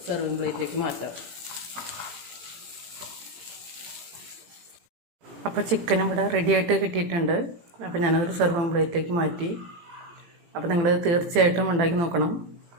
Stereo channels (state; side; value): late; left; 18 ms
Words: സെർവിങ് പ്ലേറ്റിലേക്ക് മാറ്റാം. അപ്പോൾ ചിക്കൻ ഇവിടെ റെഡിയായിട്ട് കിട്ടിയിട്ടുണ്ട്. അപ്പോൾ ഞാനതൊരു സെർവിങ് പ്ലേറ്റിലേക്ക് മാറ്റി. അപ്പോൾ നിങ്ങൾ തീർച്ചയായിട്ടും ഉണ്ടാക്കി നോക്കണം.